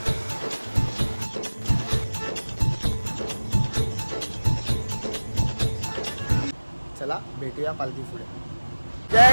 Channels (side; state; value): both; inverted; correlation -1.00